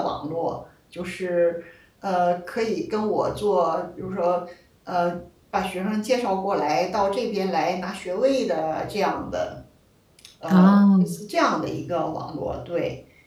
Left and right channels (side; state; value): both; identical; correlation 1.00